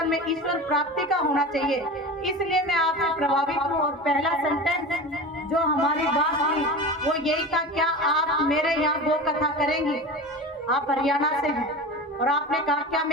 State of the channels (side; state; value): both; normal; correlation 0.30